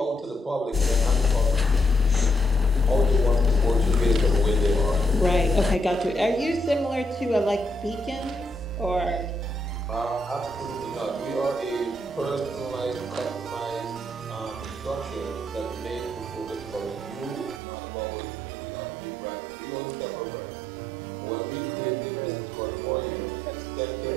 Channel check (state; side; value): drops out; left; at 17.6 s